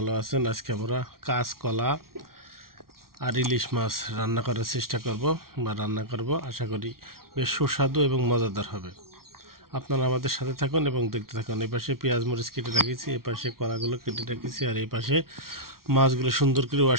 আছেন। আজকে আমরা কাঁচকলা আর ইলিশ মাছ রান্না করার চেষ্টা করব বা রান্না করব। আশা করি বেশ সুস্বাদু এবং মজাদার হবে। আপনারা আমাদের সাথে থাকুন এবং দেখতে থাকুন। এই পাশে পেঁয়াজ মরিচ কেটে রেখেছি, এই পাশে কলাগুলো কেটে রেখেছি, আর এই পাশে মাছগুলো সুন্দর করে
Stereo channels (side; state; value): left; late; 0.93 ms